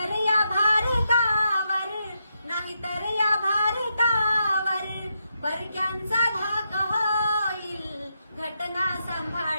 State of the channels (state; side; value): inverted; both; correlation -0.82